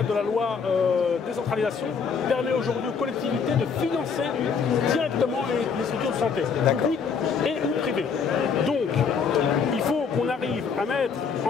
de la loi décentralisation, permet aujourd'hui aux collectivités de financer directement les structures de santé, publiques et ou privées. Donc, il faut qu'on arrive à mettre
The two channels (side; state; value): right; quieter; 5.9 dB